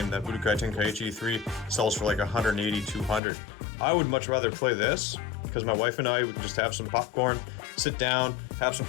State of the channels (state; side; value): drops out; right; at 3.2 s